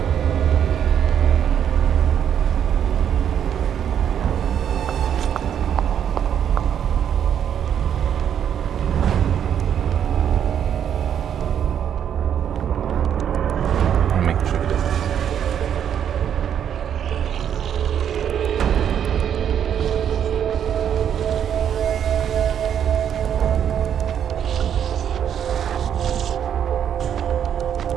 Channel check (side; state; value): left; quieter; 9.0 dB